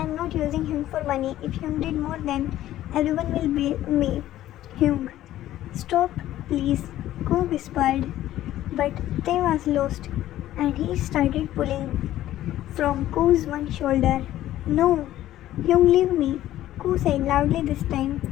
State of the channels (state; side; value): quieter; right; 13.7 dB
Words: am not using him for money. If Hyun did more, then everyone will blame me." "Hyun, stop please, Ko whispered. But Tae was lost, and he started pulling from Ko's one shoulder. No, Hyung, leave me, Ko said loudly this time.